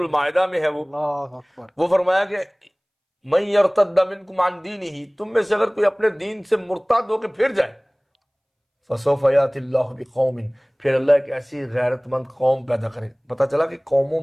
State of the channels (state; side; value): identical; both; correlation 1.00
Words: میں ہے وہ فرمایا کہ من یرتد منکم عن دینہ، تم میں سے اگر کوئی اپنے دین سے مرتد ہو کے پھر جائے، فسوف یأتی اللہ بقوم، پھر اللہ ایک ایسی غیرت مند قوم پیدا کرے. پتہ چلا کہ قوموں